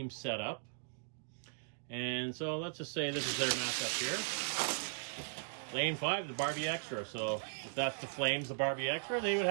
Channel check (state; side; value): silent; left; digital silence